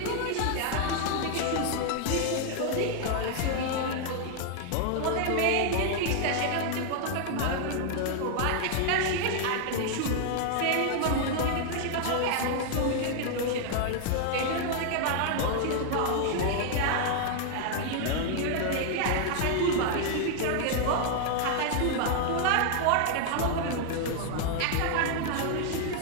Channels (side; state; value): both; different; correlation 0.00